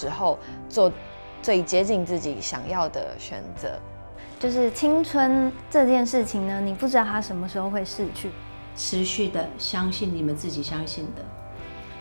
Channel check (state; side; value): inverted; both; correlation -1.00